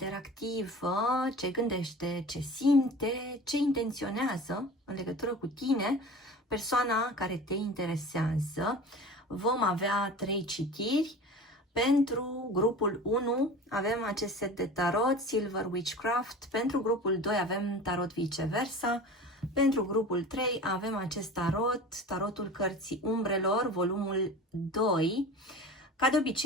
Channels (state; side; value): normal; both; correlation 0.37